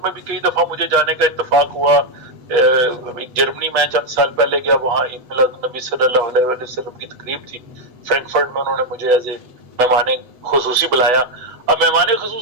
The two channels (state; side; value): late; left; 8.1 ms